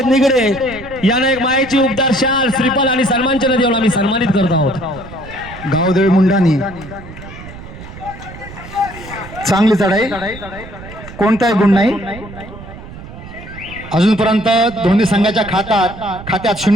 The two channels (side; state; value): right; noise; rumble, 15 dB below the sound